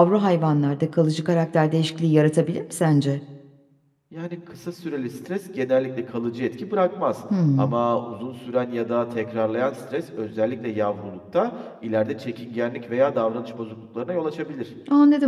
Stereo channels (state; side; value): identical; both; correlation 1.00